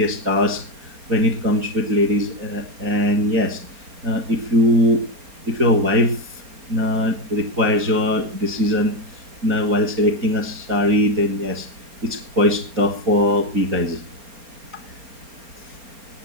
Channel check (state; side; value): late; left; 4.3 ms